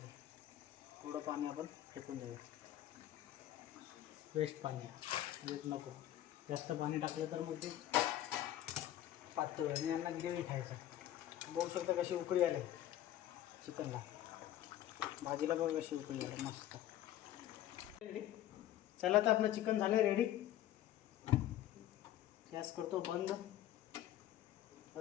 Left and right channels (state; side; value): quieter; right; 12.7 dB